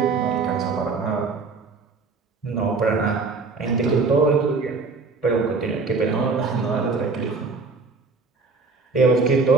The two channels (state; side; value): quieter; left; 4.3 dB